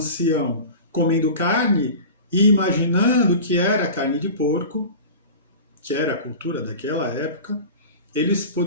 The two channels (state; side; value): inverted; both; correlation -0.34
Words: comendo carne e imaginando que era carne de porco, que era a cultura daquela época, eles